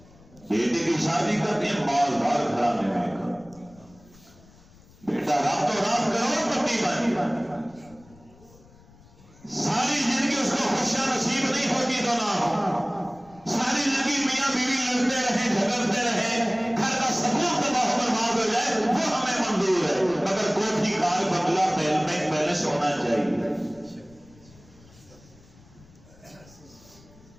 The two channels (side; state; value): left; noise; rumble, 25 dB below the sound